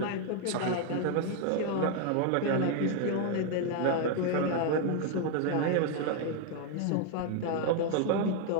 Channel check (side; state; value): both; different; correlation 0.00